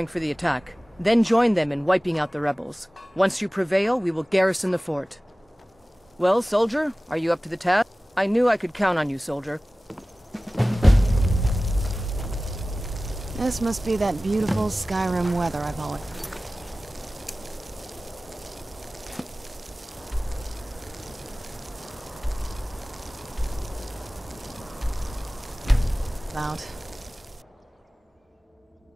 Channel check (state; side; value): normal; both; correlation 0.97